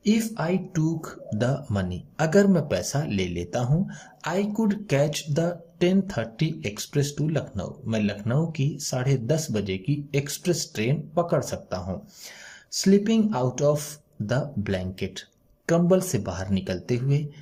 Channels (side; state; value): both; identical; correlation 1.00